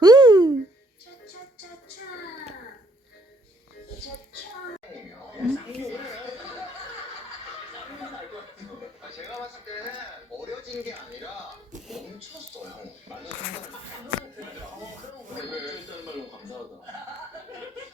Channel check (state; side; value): normal; both; correlation 0.67